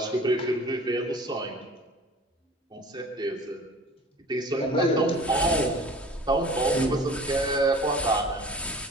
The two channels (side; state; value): both; normal; correlation 0.44